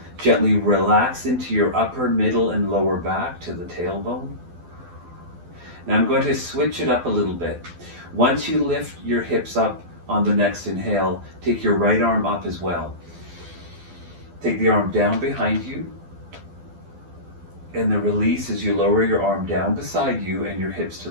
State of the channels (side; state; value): left; late; 12 ms